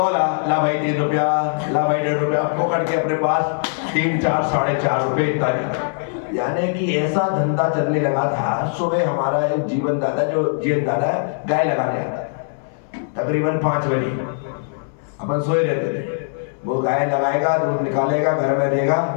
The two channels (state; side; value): silent; right; 62 dB below the other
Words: ला भाई 3 रुपया, ला भाई 1.5 रुपया, पकड़ के अपने पास 3, 4, 4.5 रुपए इतना। यानी कि ऐसा धंधा चलने लगा था। सुबह हमारा एक जीवन दादा गाय लगाने आता था, तकरीबन 5 बजे अपन सोए रहते थे। वो गाय लगाएगा, दूध निकालेगा, घर में देगा